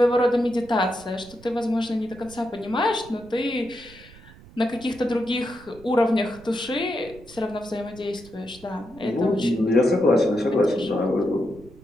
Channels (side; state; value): right; noise; rumble, 22 dB below the sound